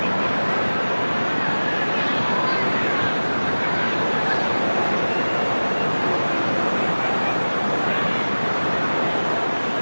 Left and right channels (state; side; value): inverted; both; correlation -1.00